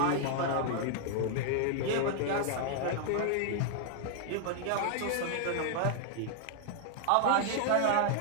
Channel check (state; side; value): different; both; correlation 0.00